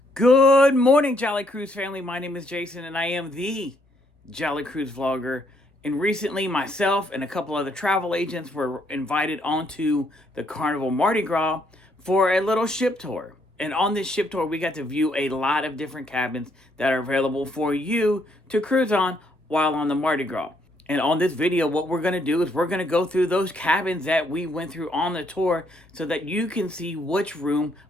Good morning, Jolly Cruise family. My name is Jason, and I am the Jolly Cruise vlogger. And recently, myself and a couple other travel agents were invited onto the Carnival Mardi Gras for a little ship tour. And on this ship tour, we got to view a lot of different cabins that are available for you to cruise on while on the Mardi Gras. And on this video, what we're going to do is we're going to go through those cabins that we went through on the tour so that you can see which room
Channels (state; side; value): normal; both; correlation 0.71